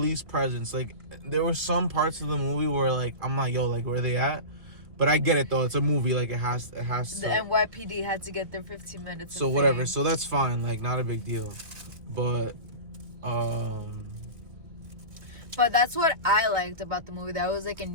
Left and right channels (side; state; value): left; late; 2.0 ms